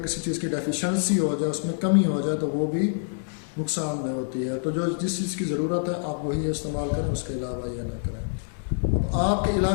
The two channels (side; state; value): right; silent; digital silence